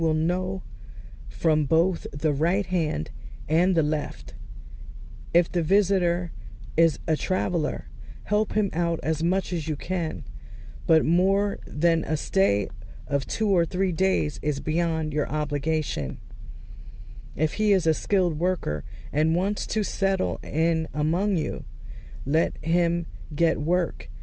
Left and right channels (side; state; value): both; identical; correlation 1.00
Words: know from both the right hand and the left. If the visitor is a traveler, help him out as much as you can, but more than a stay of 2 or 3 days is beyond your obligation. If he is a skilled worker and wants to settle in among you, let him get work